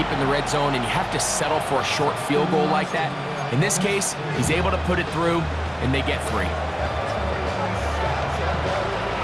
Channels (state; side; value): identical; both; correlation 1.00